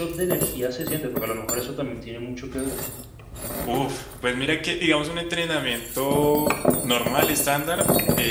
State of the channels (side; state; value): both; identical; correlation 1.00